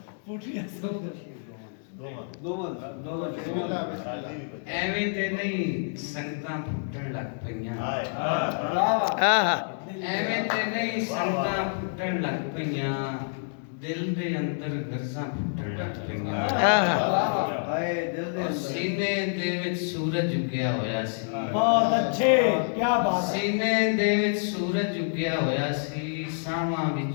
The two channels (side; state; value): right; silent; digital silence